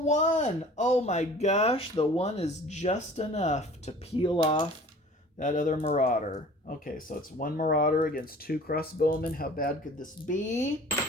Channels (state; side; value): normal; both; correlation 0.46